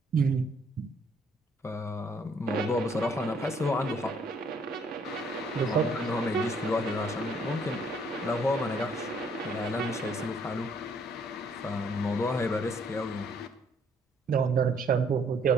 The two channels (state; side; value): normal; both; correlation 0.65